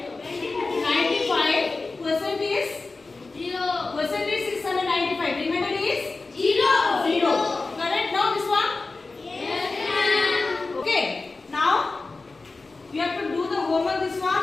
Percent is 695. Remainder is 0. Correct now this one? Okay. Now you have to do the homework this one,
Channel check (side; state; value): right; quieter; 3.7 dB